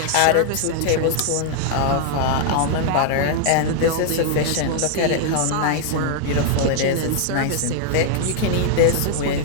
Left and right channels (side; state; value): both; different; correlation 0.00